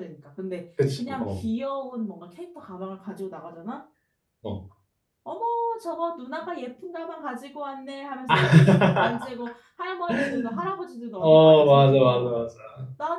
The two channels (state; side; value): identical; both; correlation 1.00